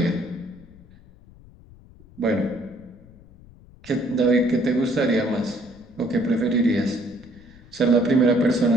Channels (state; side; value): noise; left; rumble, 23 dB below the sound